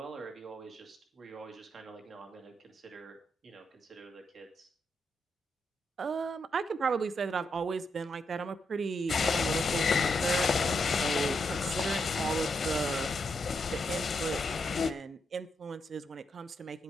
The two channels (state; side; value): normal; both; correlation 0.82